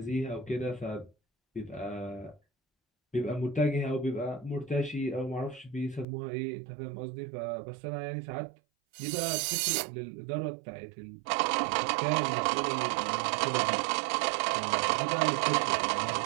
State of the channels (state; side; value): drops out; left; at 6.1 s